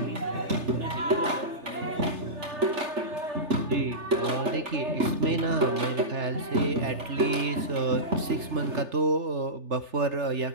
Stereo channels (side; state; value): left; late; 3.4 ms